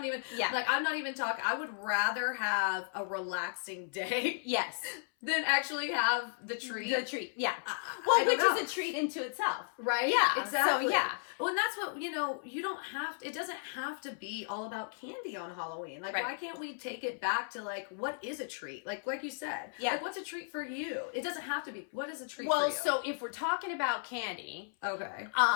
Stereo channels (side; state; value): right; silent; 55 dB below the other